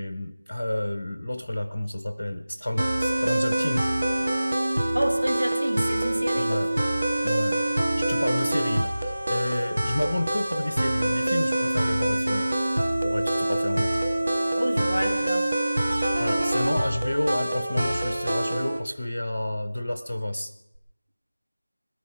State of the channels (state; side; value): inverted; both; correlation -0.96